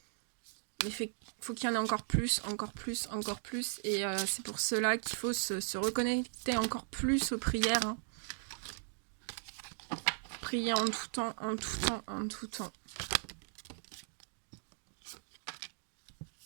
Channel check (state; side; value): silent; left; digital silence